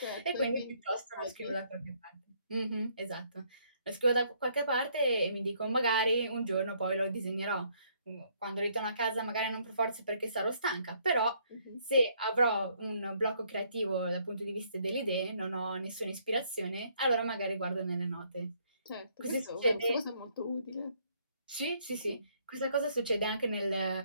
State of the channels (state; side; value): inverted; both; correlation -0.68